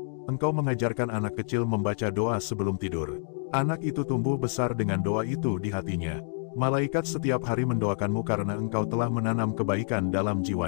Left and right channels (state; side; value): silent; right; digital silence